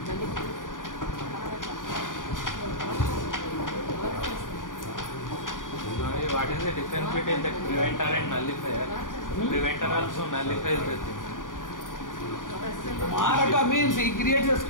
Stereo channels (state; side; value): late; right; 0.88 ms